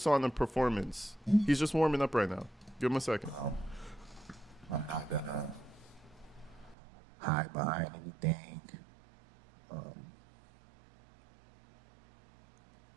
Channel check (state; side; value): drops out; left; at 6.8 s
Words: on a performance. He's just warming up right now. Give him a second. I'm not gonna hide behind anything.